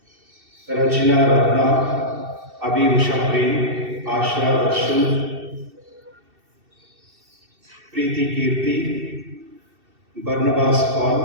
Rajina, Ratna, Abi, Usha, Prem, Asha, Darshan, Preethi, Keerthi, Barnabas,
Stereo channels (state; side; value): late; left; 2.7 ms